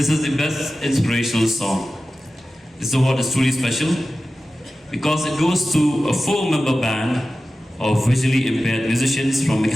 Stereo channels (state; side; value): normal; both; correlation 0.94